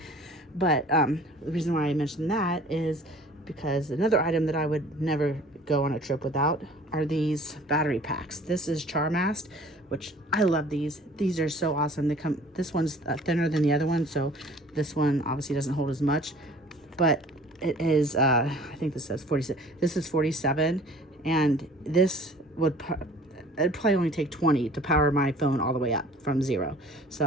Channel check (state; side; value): normal; both; correlation 0.49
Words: But the reason why I mentioned that is because another item that I would never go on a trip without are these battery packs. This is Charmast, which I love these. These are so awesome. This one's thinner than the other one, so this one obviously doesn't hold as much, but It is, I think this says 47. This is 47, and this would, it'd probably only take 20 to power my phone all the way up from 0.